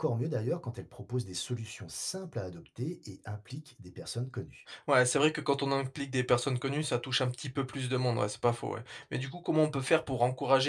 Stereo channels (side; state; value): both; identical; correlation 1.00